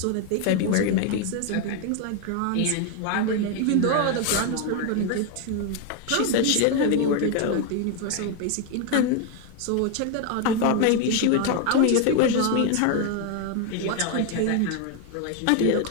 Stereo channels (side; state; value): both; different; correlation 0.01